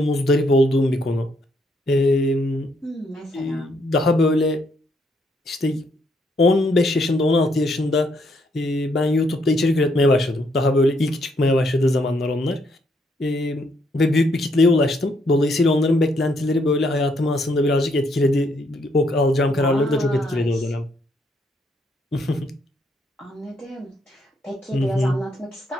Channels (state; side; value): normal; both; correlation 0.73